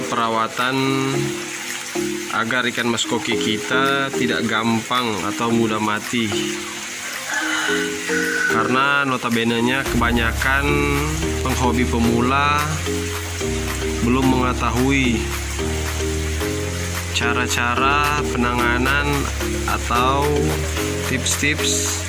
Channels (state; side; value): identical; both; correlation 1.00